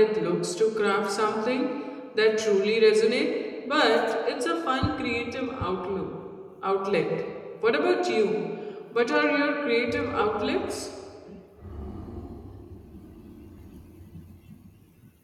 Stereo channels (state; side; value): identical; both; correlation 1.00